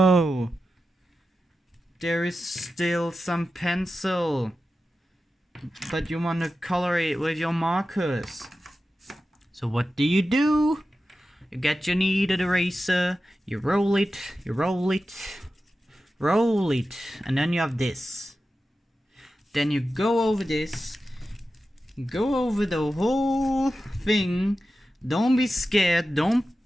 there is still some pencil, but you want to color it with your markers. So what do? You get your kneaded eraser, you roll it, and then you have this. Then you go over this, go over the whole thing. Don't be scared, don't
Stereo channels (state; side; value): normal; both; correlation 0.92